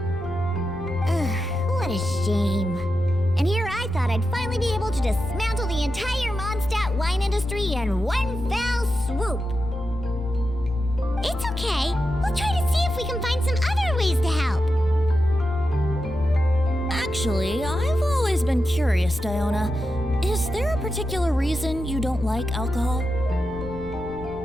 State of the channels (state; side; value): noise; left; rumble, 14 dB below the sound